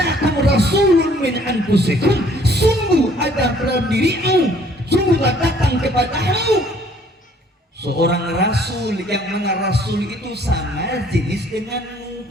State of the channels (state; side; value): normal; both; correlation 0.59